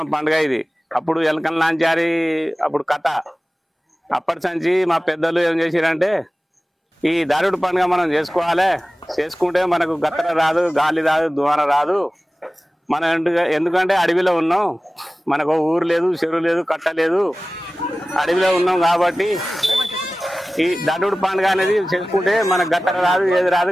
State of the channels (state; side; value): normal; both; correlation 0.97